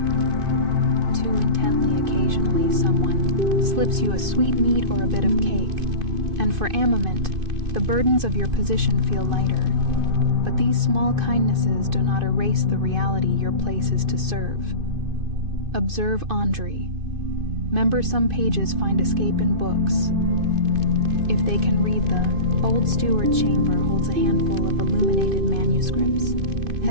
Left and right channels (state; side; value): late; left; 2.5 ms